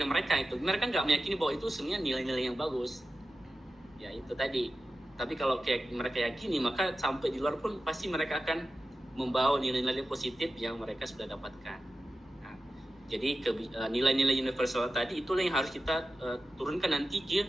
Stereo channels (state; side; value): normal; both; correlation 0.93